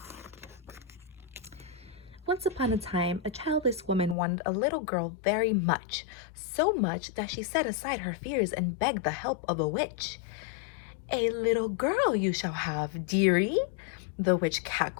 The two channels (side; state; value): right; drops out; at 4.2 s